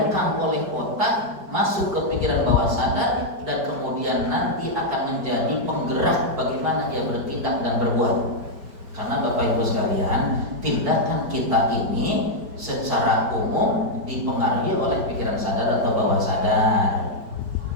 oleh otak, masuk ke pikiran bawah sadar, dan kemudian nanti akan menjadi penggerak bagaimana dia bertindak dan berbuat. Karena Bapak Ibu sekalian, tindakan kita ini secara umum dipengaruhi oleh pikiran sadar atau bawah sadar.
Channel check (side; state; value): left; late; 4.6 ms